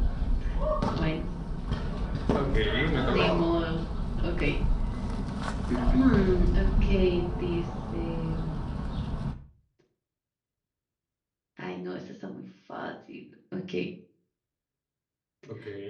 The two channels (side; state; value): both; identical; correlation 1.00